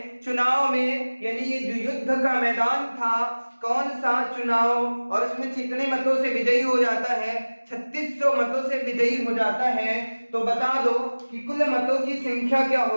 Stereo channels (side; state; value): both; inverted; correlation -1.00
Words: चुनाव में, यानी ये जो युद्ध का मैदान था, कौन सा चुनाव, और उसमें कितने मतों से विजयी हो जाता है, 3600 मतों से विजयी हो जाता है। तो बता दो कि कुल मतों की संख्या क्या